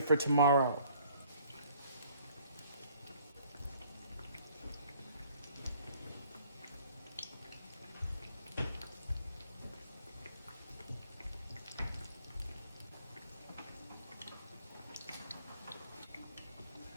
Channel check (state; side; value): inverted; both; correlation -0.59